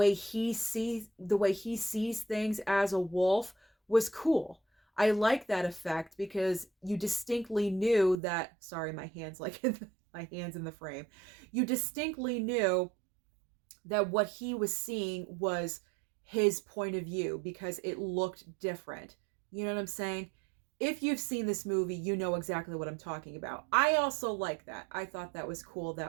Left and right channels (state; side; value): drops out; left; at 8.2 s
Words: he sees things as a wolf was cool. I like that effect because you distinctly knew that, sorry, my hands like my hands in the frame. You distinctly knew that what he was seeing was his point of view because it looked different. You know what I'm saying? If you've seen this movie, you know exactly what I'm talking about. I also like that. I thought that was cool.